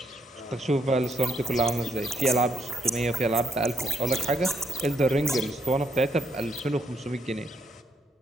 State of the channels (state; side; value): normal; both; correlation 0.74